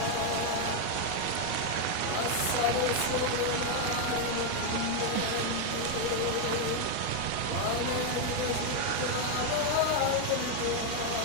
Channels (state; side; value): different; both; correlation 0.01